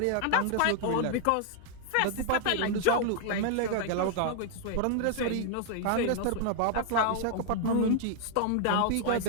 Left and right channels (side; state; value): both; different; correlation 0.00